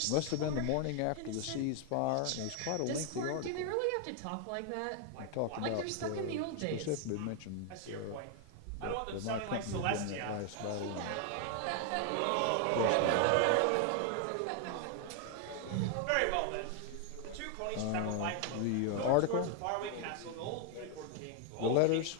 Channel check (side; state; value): both; different; correlation 0.01